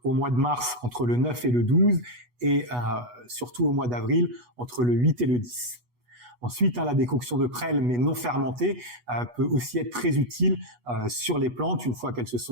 au mois de mars entre le 9 et le 12 et surtout au mois d'avril entre le 8 et le 10. Ensuite, la décoction de prêle, mais non fermentée, peut aussi être très utile sur les plantes une fois qu'elles se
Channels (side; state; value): left; late; 8.2 ms